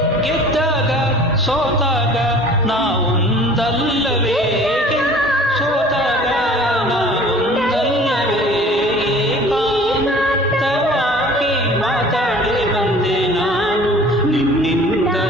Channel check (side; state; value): both; normal; correlation 0.47